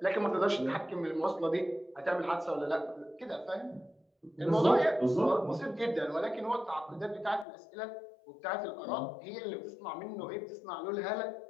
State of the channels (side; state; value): right; drops out; at 7.5 s